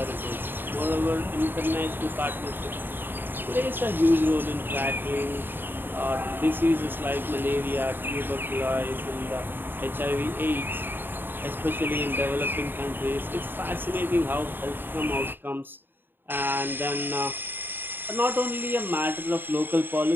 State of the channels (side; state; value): left; late; 0.096 ms